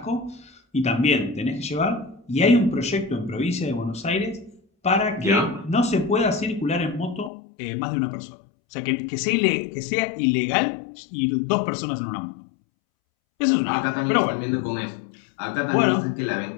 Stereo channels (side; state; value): right; drops out; at 7.3 s